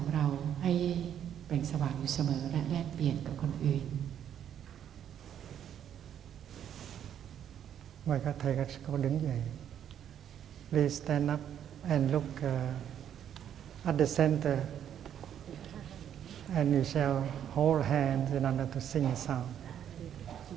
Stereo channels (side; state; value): left; quieter; 9.7 dB